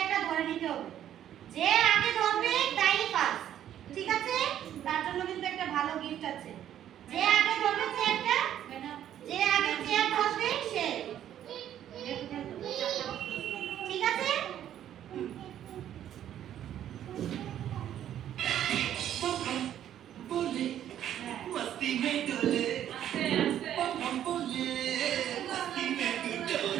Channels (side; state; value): left; quieter; 10.9 dB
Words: ধরে নিতে হবে। যে আগে ধরবে তাই ফার্স্ট, ঠিক আছে? তার জন্য কিন্তু একটা ভালো গিফট আছে। যে আগে ধরবে চেয়ারটা, যে আগে চেয়ার ধরবে সে, ঠিক আছে? मस्ती में डोले हम बोले मस्ती में डोले